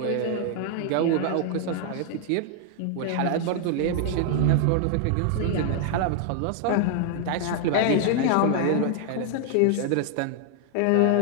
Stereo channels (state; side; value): different; both; correlation 0.00